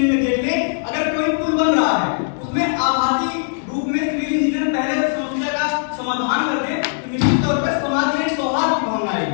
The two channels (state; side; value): silent; right; digital silence